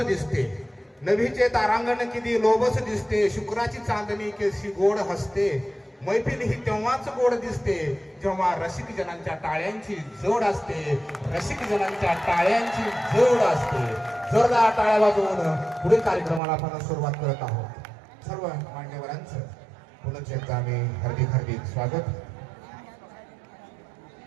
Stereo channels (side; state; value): left; drops out; at 16.4 s